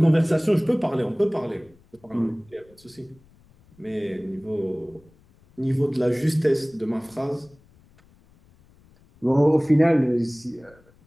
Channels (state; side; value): noise; left; rumble, 30 dB below the sound